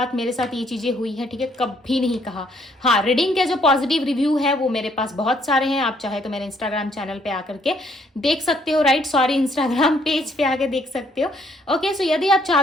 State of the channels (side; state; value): both; normal; correlation 0.67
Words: मेरे साथ ये चीज़ें हुई हैं, ठीक है, कभी नहीं कहा। हाँ, रीडिंग के जो पॉजिटिव रिव्यू है वो मेरे पास बहुत सारे हैं। आप चाहे तो मेरे इंस्टाग्राम चैनल पे आकर के देख सकते हो, राइट, सॉरी, इंस्टाग्राम पेज पे आके देख सकते हो, ओके। यदि आप